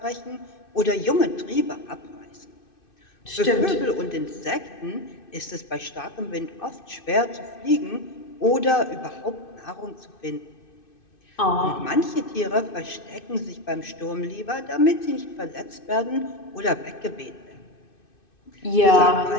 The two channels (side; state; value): right; late; 2.6 ms